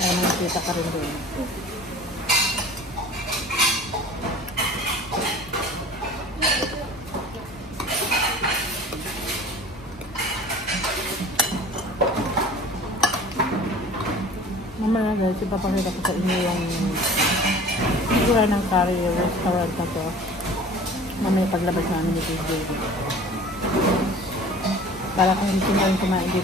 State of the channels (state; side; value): normal; both; correlation 0.44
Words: makikita ka rin doon. Mamaya guys, ipapakita ko sa inyo yung figura ng curry restaurant na to. Mamaya paglabas namin dito yung baby. Para kung gusto nyo rin kumain